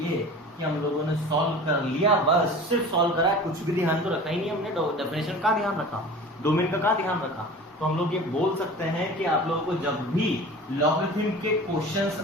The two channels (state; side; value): normal; both; correlation 0.38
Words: कि हम लोगों ने सॉल्व कर लिया, बस सिर्फ सॉल्व करा है, कुछ भी ध्यान तो रखा ही नहीं हमने, डेफिनेशन का ध्यान रखा, डोमेन का ध्यान रखा। तो हम लोग ये बोल सकते हैं कि आप लोगों को जब भी लॉगरिथम के क्वेश्चंस